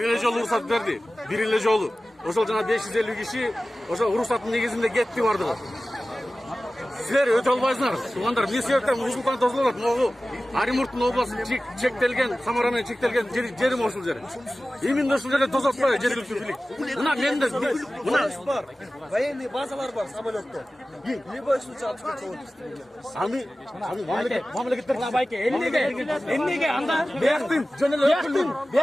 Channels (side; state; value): both; normal; correlation 0.96